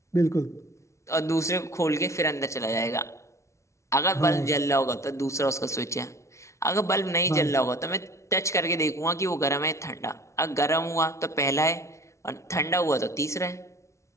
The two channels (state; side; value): late; right; 0.14 ms